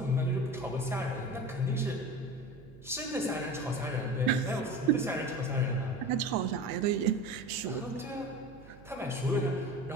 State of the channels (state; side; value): noise; right; hum, 20 dB below the sound